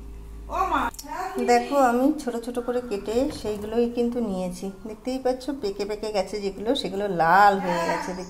দেখো আমি ছোট ছোট করে কেটে সেইগুলোই কিন্তু নিয়েছি। দেখতেই পাচ্ছ পেকে পেকে গেছে যেগুলো, সেগুলো লাল হয়ে গেছে,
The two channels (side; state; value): both; identical; correlation 1.00